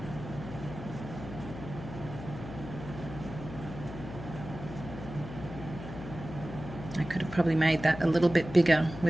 I could have probably made that a little bit bigger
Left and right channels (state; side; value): noise; left; hum, 11 dB below the sound